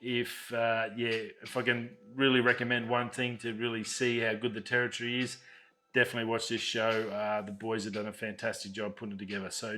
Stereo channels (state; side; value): identical; both; correlation 1.00